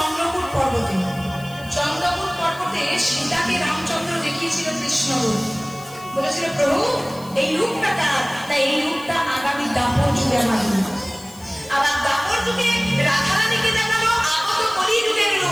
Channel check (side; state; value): left; noise; hiss, 21 dB below the sound